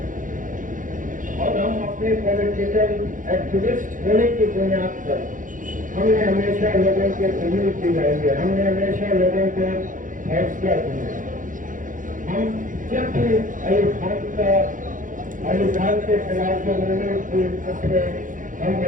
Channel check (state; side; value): late; left; 0.38 ms